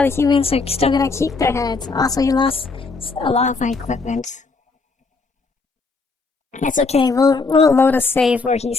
humans are still gonna keep their heads. Also, he lost a lot of my equipment. It's okay. We'll load a save where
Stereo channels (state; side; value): quieter; right; 4.1 dB